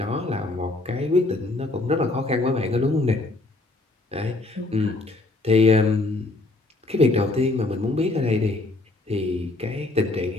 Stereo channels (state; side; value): quieter; right; 3.0 dB